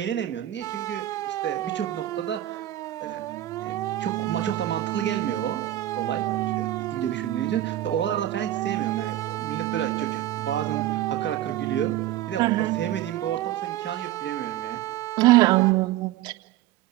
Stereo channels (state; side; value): quieter; left; 13.7 dB